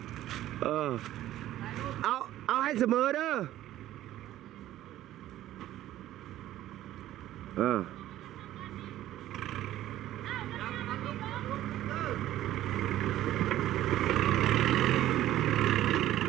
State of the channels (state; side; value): quieter; left; 13.7 dB